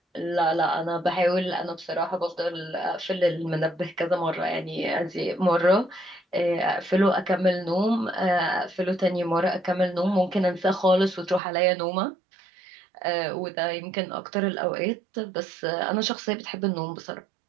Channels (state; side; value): drops out; left; at 11.4 s